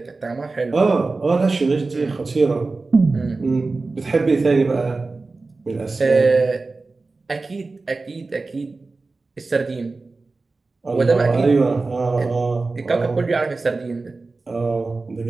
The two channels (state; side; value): quieter; left; 3.7 dB